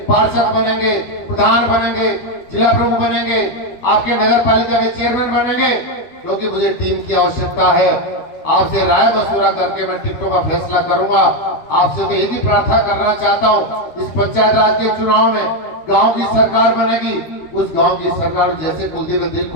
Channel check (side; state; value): right; late; 13 ms